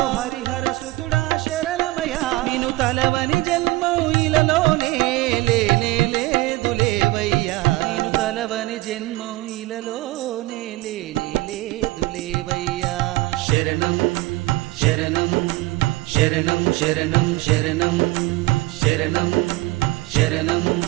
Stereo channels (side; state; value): left; quieter; 20.0 dB